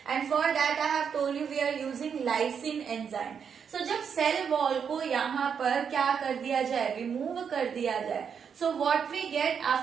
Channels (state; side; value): quieter; left; 7.0 dB